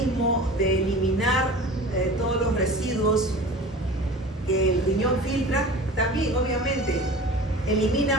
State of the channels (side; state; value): both; normal; correlation 0.38